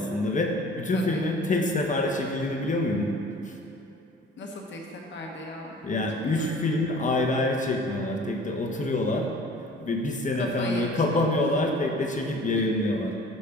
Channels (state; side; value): normal; both; correlation 0.47